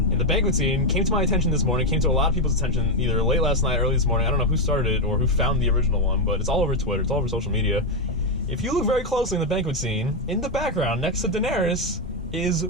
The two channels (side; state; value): both; normal; correlation 0.04